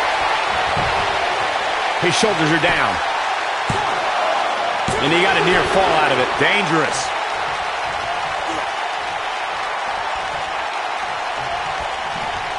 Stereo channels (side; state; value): both; identical; correlation 1.00